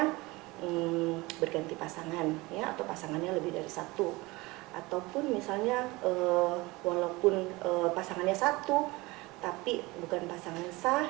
berganti pasangan ya, atau pasangannya lebih dari satu, ataupun misalnya walaupun pasangannya satu tapi bukan pasangan sah,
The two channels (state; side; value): quieter; left; 22.3 dB